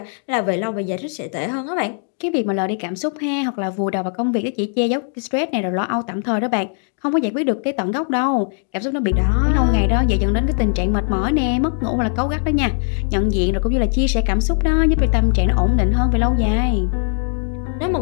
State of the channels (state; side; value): silent; right; 56 dB below the other